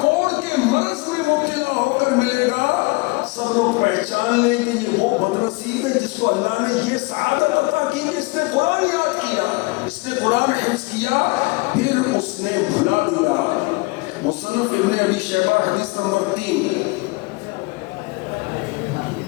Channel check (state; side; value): quieter; right; 25.7 dB